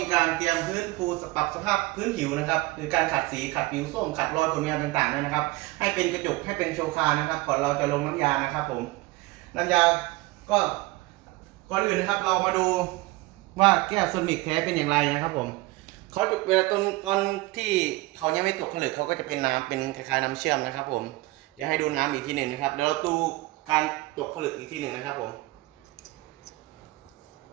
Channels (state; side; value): quieter; left; 21.2 dB